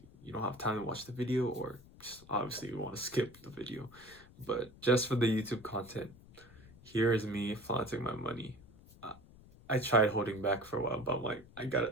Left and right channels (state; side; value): noise; left; rumble, 22 dB below the sound